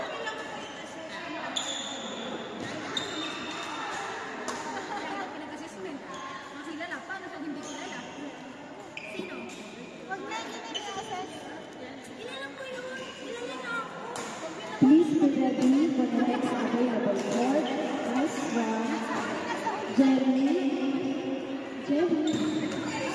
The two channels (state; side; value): identical; both; correlation 1.00